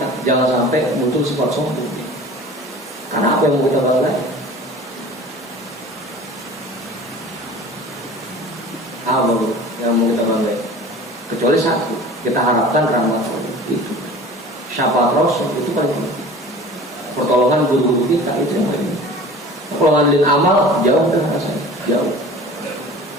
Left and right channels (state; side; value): normal; both; correlation 0.41